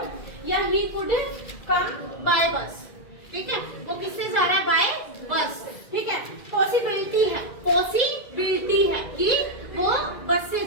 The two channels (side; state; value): right; late; 2.0 ms